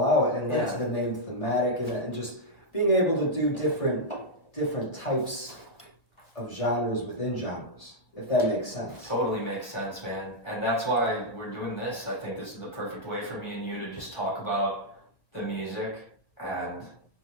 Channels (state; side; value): late; right; 1.3 ms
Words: out and led Yeah. to the name Thematic, and just being able to do different types of genres within genres. if that makes sense. Totally makes sense, man. And that's why we're doing this. I think this is the perfect way for me and you to just talk about the music and